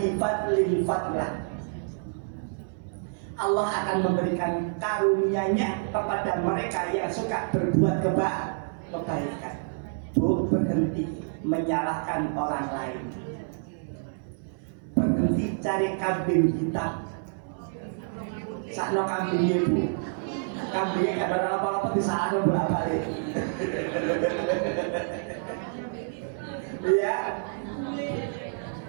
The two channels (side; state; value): left; silent; 58 dB below the other